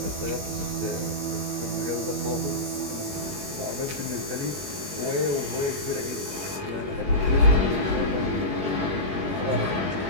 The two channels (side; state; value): left; late; 21 ms